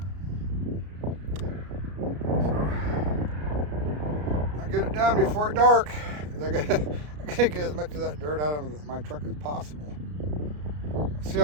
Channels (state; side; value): late; left; 33 ms